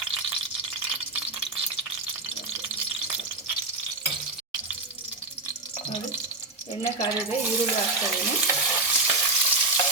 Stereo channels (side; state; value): left; quieter; 3.1 dB